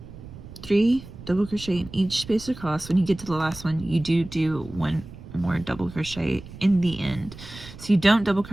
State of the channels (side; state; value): right; noise; rumble, 15 dB below the sound